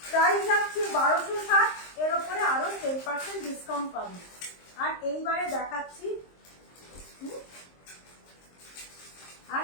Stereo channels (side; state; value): right; late; 23 ms